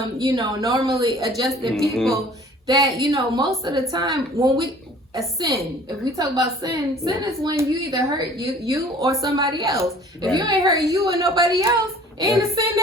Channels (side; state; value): both; normal; correlation 0.50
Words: you know, normally adjusted people that, you know, most of the time when a sin, if we talk about sin is when you either hurt you or somebody else. If you ain't hurt you or nobody else, ain't a sin